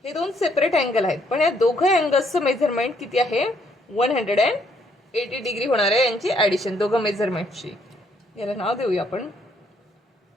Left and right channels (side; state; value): both; normal; correlation 0.69